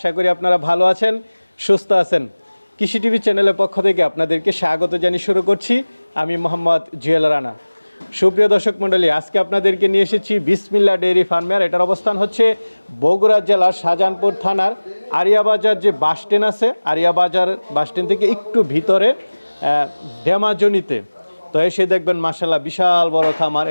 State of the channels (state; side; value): inverted; both; correlation -1.00